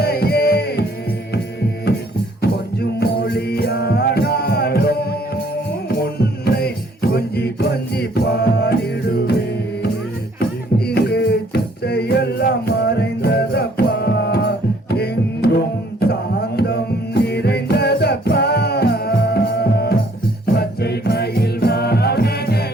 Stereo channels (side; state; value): both; normal; correlation 0.62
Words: கொஞ்சம் மொழியானாலும் உன்னை கொஞ்சி கொஞ்சி பாடிடுவேன். இங்கு சிற்றையெல்லாம் மறைந்ததப்பா, எங்கும் சாந்தம் நிறைந்ததப்பா. பச்சை மயில்